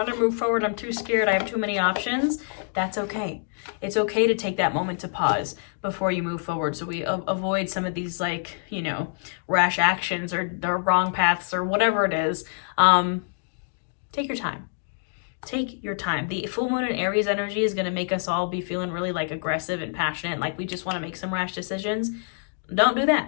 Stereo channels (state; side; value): silent; right; digital silence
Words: to move forward, I'm too scared, I have too many options, that's okay. It's okay to take that moment to pause before you move forward, so we avoid some of these like, rash actions or wrong paths or whatever it is. Take your time. Take your time. The full moon in Aries energy is going to make us all be feeling really like aggressive and passionate, like we just want to make some rash decisions. Don't do